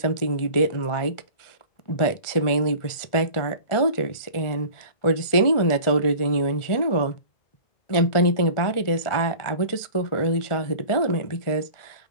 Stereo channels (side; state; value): right; late; 1.4 ms